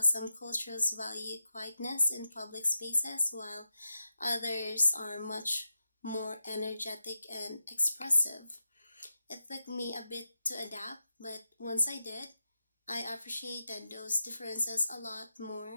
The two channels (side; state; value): both; inverted; correlation -0.87